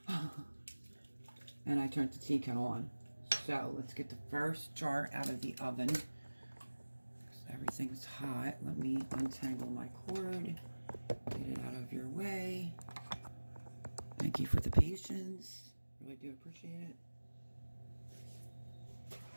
And I turned the tea kettle on. So, let's get the first jar out of the oven. Everything's hot. Let me untangle my cord. Get it out of your way. Thank you for the patience. Really do appreciate it.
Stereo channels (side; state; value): both; inverted; correlation -1.00